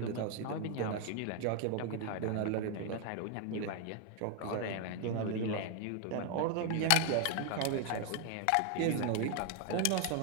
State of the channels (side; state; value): both; different; correlation 0.00